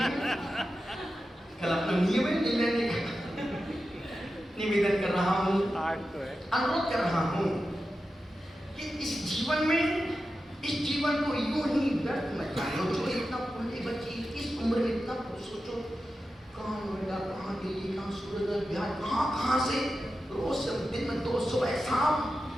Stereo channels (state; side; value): normal; both; correlation 0.92